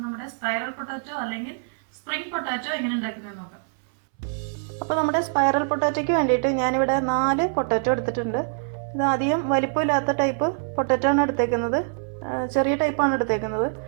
നമ്മുടെ സ്പൈറൽ പൊട്ടാറ്റോ അല്ലെങ്കിൽ സ്പ്രിംഗ് പൊട്ടാറ്റോ എങ്ങനെ ഉണ്ടാക്കുന്നത് നോക്കാം. അപ്പോൾ നമ്മുടെ സ്പൈറൽ പൊട്ടാറ്റോയ്ക്ക് വേണ്ടിയിട്ട് ഞാനിവിടെ 4 പൊട്ടാറ്റോ എടുത്തിട്ടുണ്ട്. ഇത് അധികം വലിപ്പമില്ലാത്ത ടൈപ്പ് പൊട്ടാറ്റോ ആണ് എടുത്തേക്കുന്നത്. ചെറിയ ടൈപ്പാണ് എടുത്തേക്കുന്നത്.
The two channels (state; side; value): silent; left; 62 dB below the other